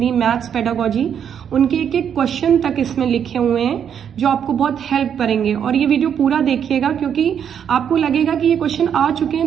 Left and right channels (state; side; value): quieter; left; 8.3 dB